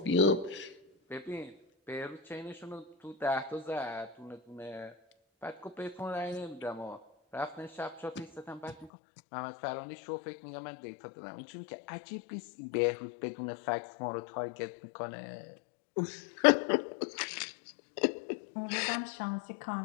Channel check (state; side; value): drops out; right; at 8.9 s